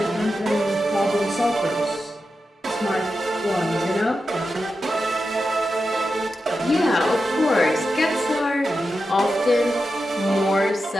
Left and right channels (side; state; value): both; normal; correlation 0.90